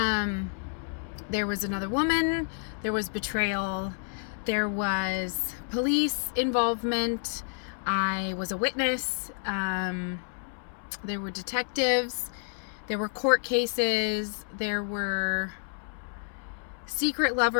was another woman, there was betrayal, there was police involvement, I was a witness, there were detectives, there were court cases, there were secret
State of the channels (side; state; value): right; silent; 58 dB below the other